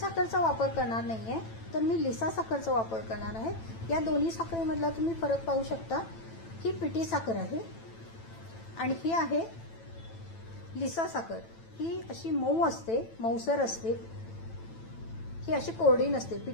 वापर करणार नाहीये, तर मी लिसा साखरचा वापर करणार आहे. या दोन्ही साखरेमधला तुम्ही फरक पाहू शकता. ही पिठी साखर आहे आणि ही आहे लिसा साखर. ही अशी मऊ असते, मऊसर असते, ही अशी कोरडी नसते.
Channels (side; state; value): right; late; 9.0 ms